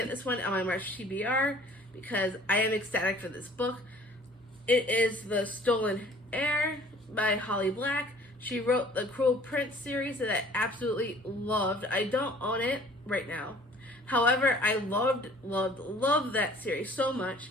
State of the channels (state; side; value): normal; both; correlation 0.52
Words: this one on my March TBR because I am ecstatic for this book. It is The Stolen Heir by Holly Black. She wrote the Cruel Prince series that I absolutely loved. I don't own it right now. However, I loved that series so much.